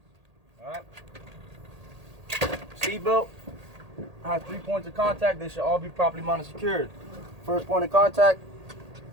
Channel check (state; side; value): late; left; 1.8 ms